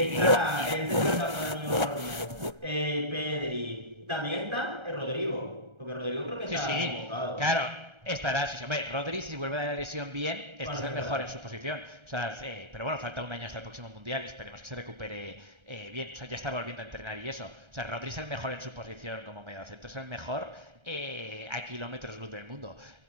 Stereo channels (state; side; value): late; left; 1.3 ms